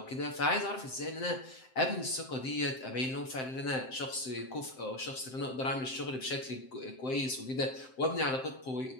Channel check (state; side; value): late; right; 7.7 ms